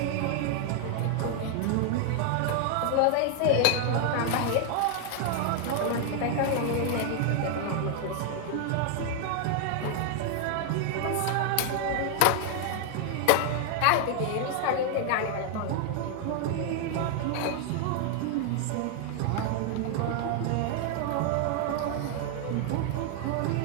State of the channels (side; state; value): both; different; correlation 0.00